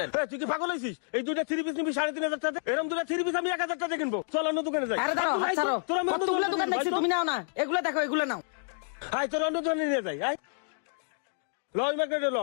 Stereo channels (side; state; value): right; silent; digital silence